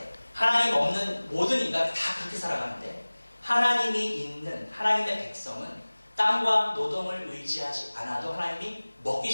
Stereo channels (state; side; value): inverted; both; correlation -1.00